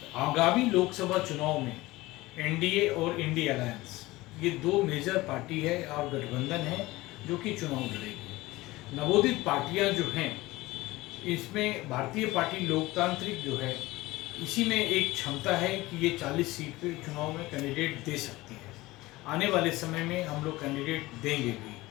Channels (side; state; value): right; quieter; 19.4 dB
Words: आगामी लोकसभा चुनाव में एनडीए और इंडी अलायंस, ये दो मेजर पार्टी है और गठबंधन है जो कि चुनाव लड़ेगी। नवोदित पार्टियां जो हैं, इसमें भारतीय पार्टी लोकतांत्रिक जो है, इसी में एक क्षमता है कि ये 40 सीट पे चुनाव में कैंडिडेट दे सकती है। आने वाले समय में हम लोग कैंडिडेट देंगे भी,